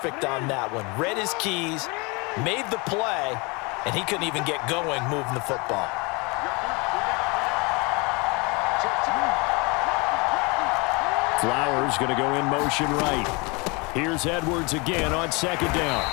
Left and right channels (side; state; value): right; quieter; 28.5 dB